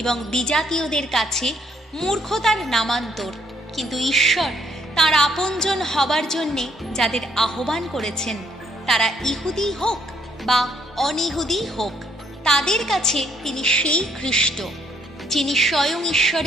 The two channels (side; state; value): both; normal; correlation 0.69